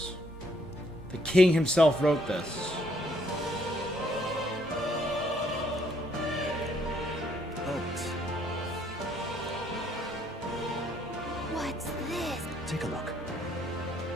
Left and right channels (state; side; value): normal; both; correlation 0.68